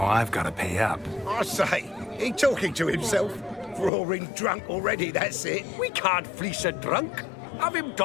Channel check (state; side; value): drops out; right; at 3.9 s